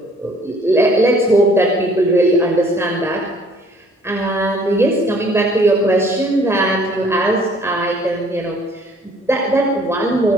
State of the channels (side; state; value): both; normal; correlation 0.58